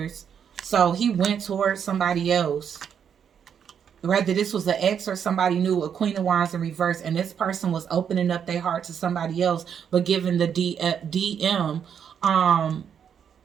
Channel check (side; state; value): left; quieter; 7.9 dB